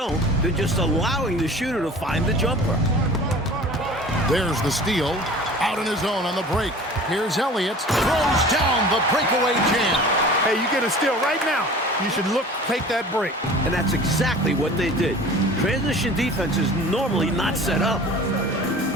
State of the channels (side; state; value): both; normal; correlation 0.42